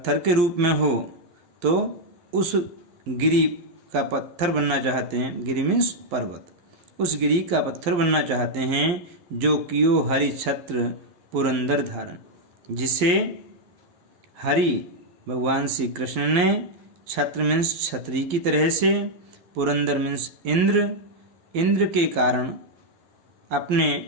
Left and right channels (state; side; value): late; left; 11 ms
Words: के रूप में हो तो उस गिरि का पत्थर बनना चाहते हैं। गिरि मीन्स पर्वत। उस गिरि का पत्थर बनना चाहते हैं जो कियो हरि छत्र पुरंदर धारण, जिसे हरि भगवान श्री कृष्ण ने छत्र मीन्स छत्री की तरह से, पुरंदर मीन्स इंद्र के कारण